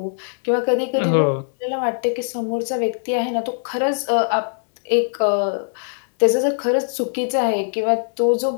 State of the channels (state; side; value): silent; right; digital silence